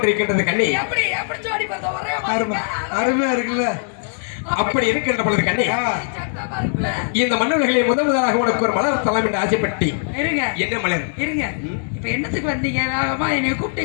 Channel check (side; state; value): right; silent; 65 dB below the other